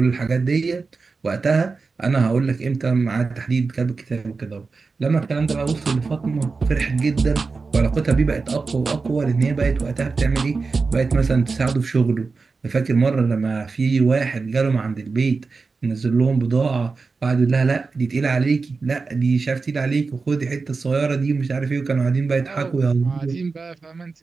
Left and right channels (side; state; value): left; quieter; 4.3 dB